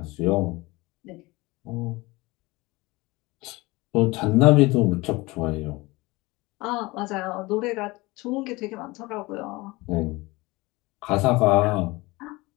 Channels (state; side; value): quieter; right; 22.3 dB